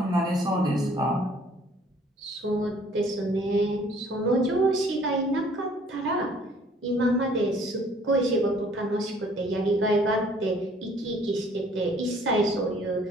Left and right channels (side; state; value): both; normal; correlation 0.57